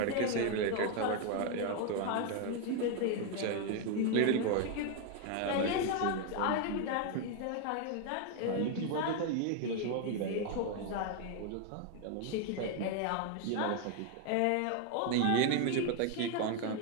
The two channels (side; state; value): both; different; correlation 0.01